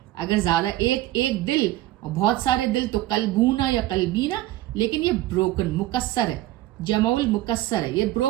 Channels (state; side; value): quieter; left; 16.0 dB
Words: اگر زیادہ ایک دل اور بہت سارے دل تو قلبونا یا قلبینا، لیکن یہ بروکن مکسر ہے، جمع المکسر ہے، یہ